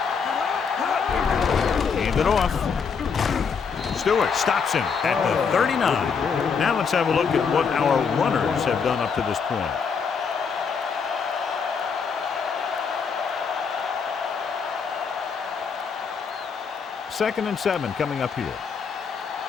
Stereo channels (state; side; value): quieter; right; 6.0 dB